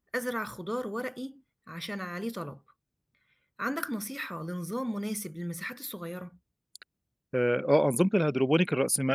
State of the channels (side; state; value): both; identical; correlation 1.00